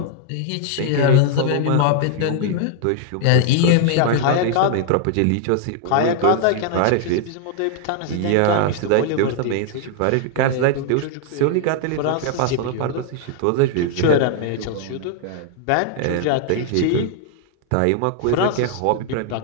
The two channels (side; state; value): both; different; correlation 0.00